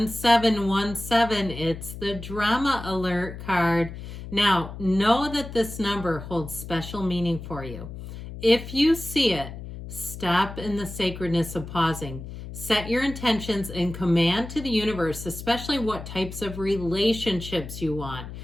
It's the drama alert card. Now, know that this number holds special meaning for you. If you see it, stop in the sacredness of pausing. Set your intentions and command to the universe, especially what types of relationships you want.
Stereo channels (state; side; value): noise; left; hum, 11 dB below the sound